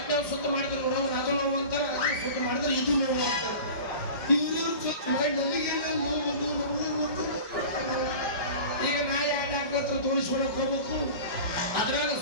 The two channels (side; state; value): right; late; 4.8 ms